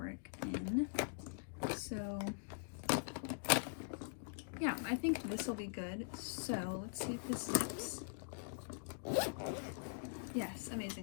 in. So yeah, I think this will be good. So let's see if this zips. Yes,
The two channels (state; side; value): silent; right; digital silence